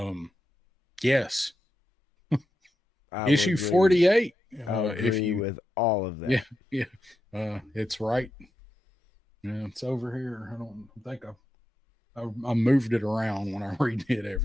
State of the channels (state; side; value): normal; both; correlation 0.87